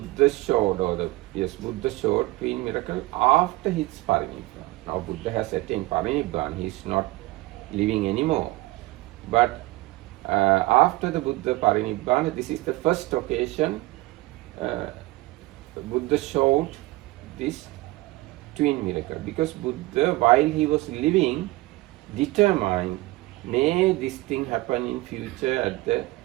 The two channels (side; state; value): left; quieter; 19.9 dB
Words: showed, Buddha showed twin miracle after his Parinibbana. Now Buddha has attained Parinibbana, he is not living anymore. But after the Buddha Parinibbana, this is the first occasion Buddha showed this twin miracle, because Buddha, while he was living, determined, may this thing happen in future at the